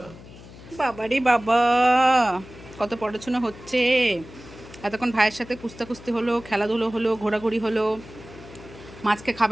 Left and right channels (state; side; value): noise; left; hum, 18 dB below the sound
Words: বাবারে বাবা, কত পড়াশোনা হচ্ছে। এতক্ষণ ভাইয়ের সাথে কুস্তি হলো, খেলাধুলো হলো, ঘোরাঘুরি হলো, মাছকে